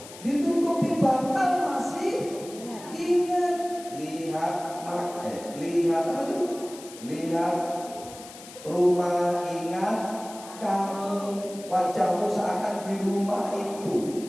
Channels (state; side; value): noise; left; hiss, 16 dB below the sound